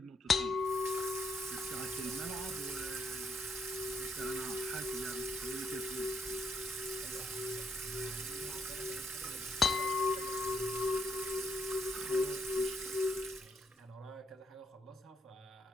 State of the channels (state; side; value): normal; both; correlation 0.75